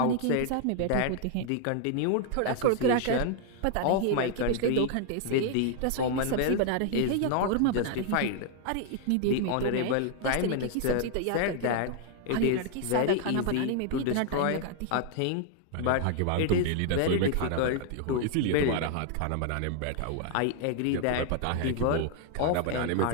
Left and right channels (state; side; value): different; both; correlation 0.00